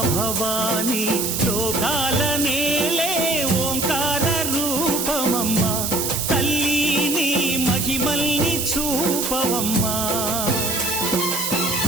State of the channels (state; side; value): noise; right; hiss, 1 dB below the sound